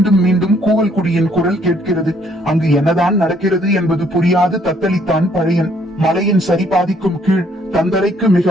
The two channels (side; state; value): both; normal; correlation 0.65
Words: மீண்டும் கூவல் குடியின் குரல் கேட்கிறது. அங்கு என்னதான் நடக்கிறது என்பது புரியாது தத்தளித்தான் பழையன். மலையின் சரிபாதிக்கும் கீழ் தந்தரைக்கு மிக